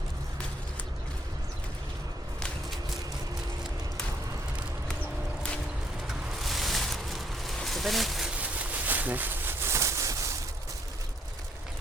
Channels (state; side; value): normal; both; correlation 0.69